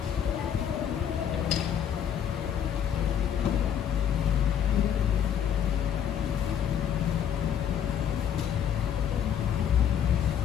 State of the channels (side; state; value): right; quieter; 8.9 dB